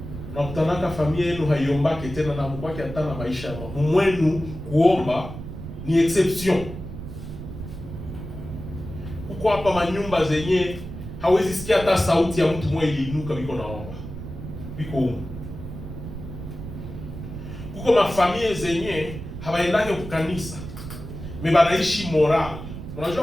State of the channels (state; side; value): noise; right; rumble, 10 dB below the sound